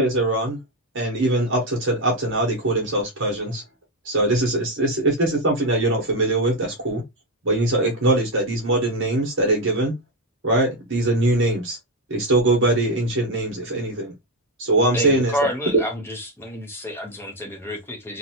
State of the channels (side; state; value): both; normal; correlation 0.07